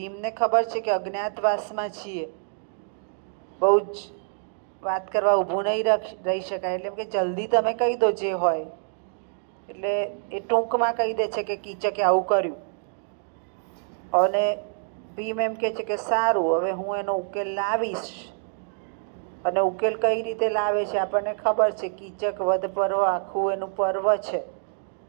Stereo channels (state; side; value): silent; left; digital silence